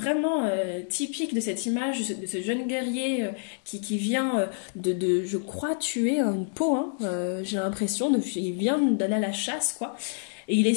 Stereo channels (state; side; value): silent; right; 60 dB below the other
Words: typique de cette image, de ce jeune guerrier qui vient je crois, tuer une peau, hein, j'ai l'impression, il vient d'aller à la chasse, quoi. Et il est